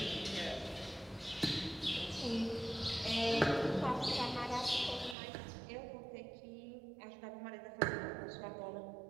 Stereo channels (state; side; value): drops out; left; at 5.2 s